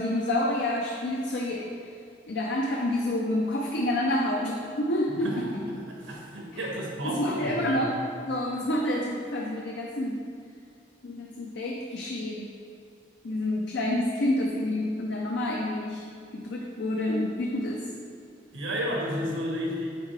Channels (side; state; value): both; normal; correlation 0.51